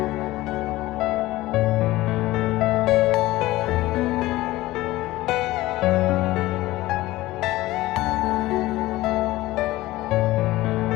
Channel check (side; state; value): right; quieter; 17.7 dB